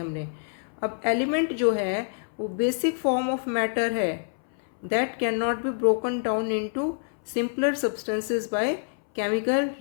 अब एलिमेंट जो है वो बेसिक फॉर्म ऑफ मैटर है that can not be broken down into simpler substances by chemical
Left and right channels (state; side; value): silent; right; 60 dB below the other